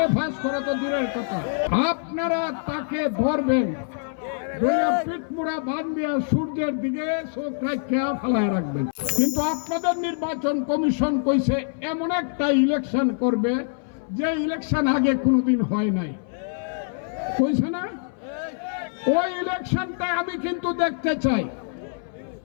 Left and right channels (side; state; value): right; silent; 60 dB below the other